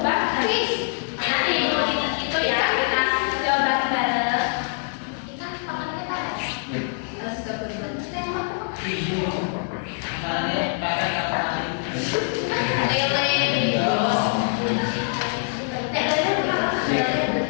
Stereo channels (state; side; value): silent; right; 60 dB below the other